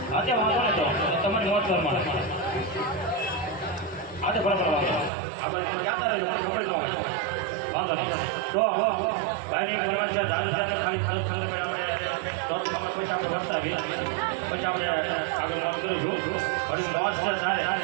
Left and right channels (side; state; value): left; drops out; at 5.1 s